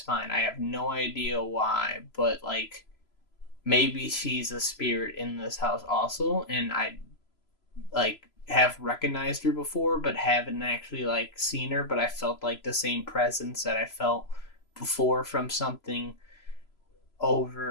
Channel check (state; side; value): late; right; 3.0 ms